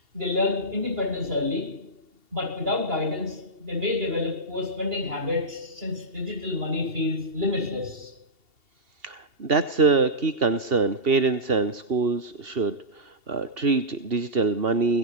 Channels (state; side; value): late; left; 2.8 ms